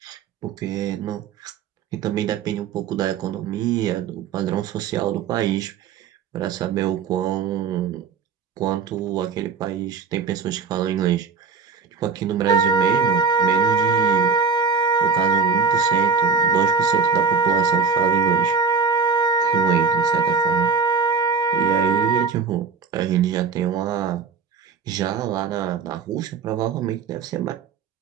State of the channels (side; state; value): left; quieter; 5.5 dB